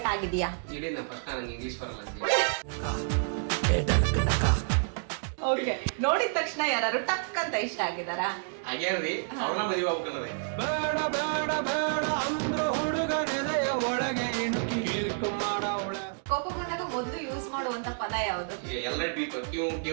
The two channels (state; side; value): silent; left; digital silence